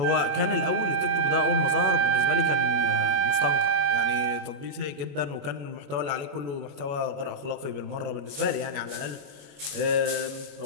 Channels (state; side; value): late; left; 22 ms